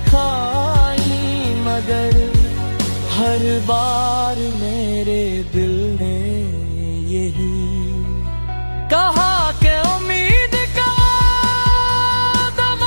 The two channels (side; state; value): both; inverted; correlation -1.00